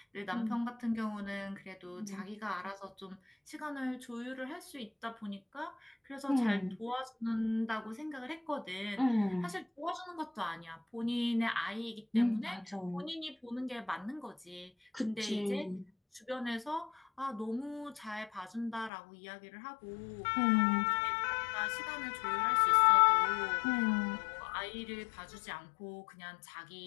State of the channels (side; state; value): right; drops out; at 18.9 s